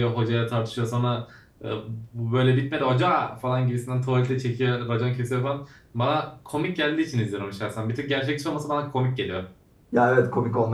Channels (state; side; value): identical; both; correlation 1.00